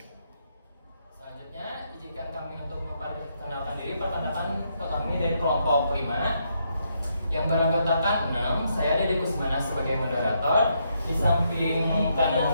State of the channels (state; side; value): inverted; both; correlation -0.77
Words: Selanjutnya, izinkan kami untuk memperkenalkan diri. Perkenalkan kami dari kelompok 5 yang beranggotakan 6. Saya Dede Kusmana sebagai moderator. Di samping